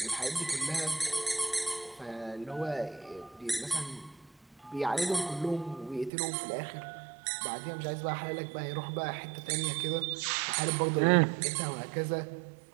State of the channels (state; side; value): drops out; left; at 6.1 s